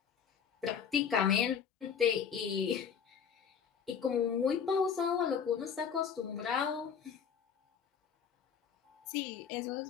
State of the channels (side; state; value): right; quieter; 7.2 dB